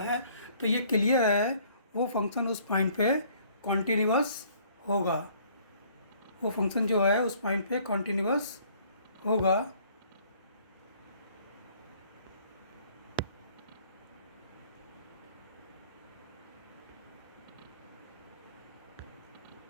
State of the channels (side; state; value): both; inverted; correlation -0.59